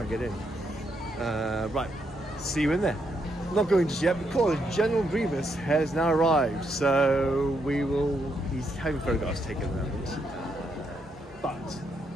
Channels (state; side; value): normal; both; correlation 0.78